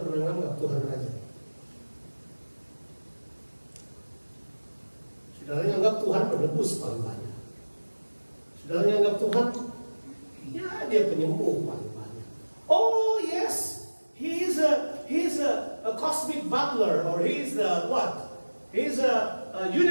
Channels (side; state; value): both; inverted; correlation -1.00